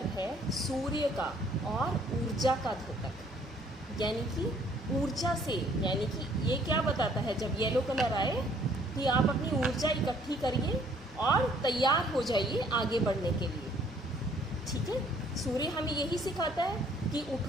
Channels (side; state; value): both; normal; correlation 0.61